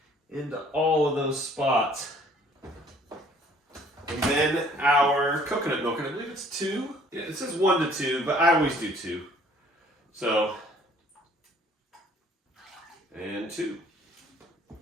into all of those spots. And then our coconut milk, and I believe it's 2. Yeah, it says 1 to 2, but I always do 2. So, and 2.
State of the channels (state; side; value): normal; both; correlation 0.57